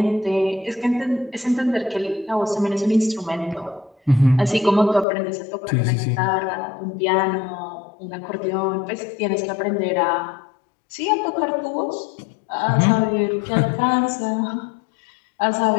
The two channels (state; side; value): drops out; right; at 5.1 s